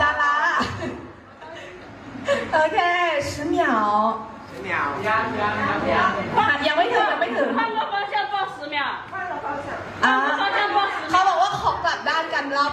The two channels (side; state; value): both; identical; correlation 1.00